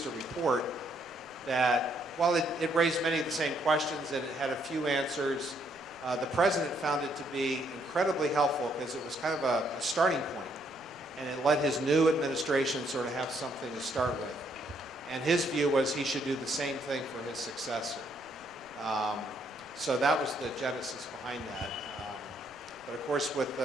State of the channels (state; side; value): noise; right; rumble, 29 dB below the sound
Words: a report that, while it raised many of the same questions and it had a few answers, the president found it to be incredibly helpful because it was kind of a starting point, and it let his new administration sort of have something to start with. And his view was he should do the same thing for his successor. So that was the genesis behind that. But of course, with